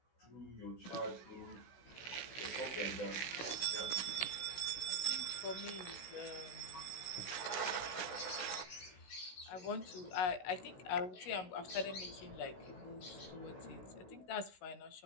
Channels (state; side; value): late; right; 16 ms